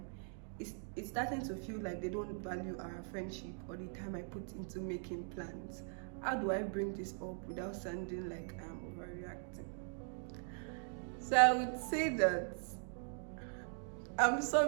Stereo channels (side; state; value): left; silent; 51 dB below the other